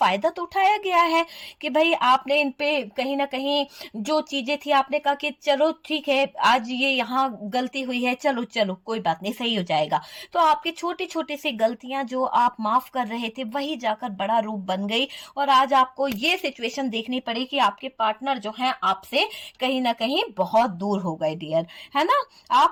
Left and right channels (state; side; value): identical; both; correlation 1.00